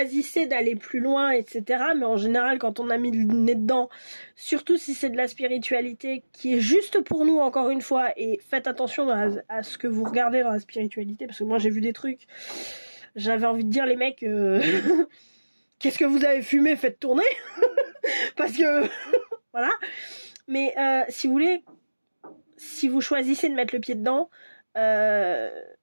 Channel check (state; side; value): inverted; both; correlation -1.00